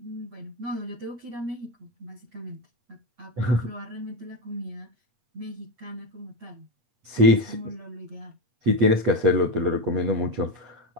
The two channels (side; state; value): left; late; 8.5 ms